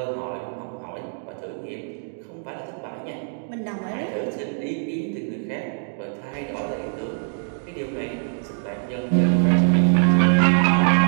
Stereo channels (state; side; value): silent; left; digital silence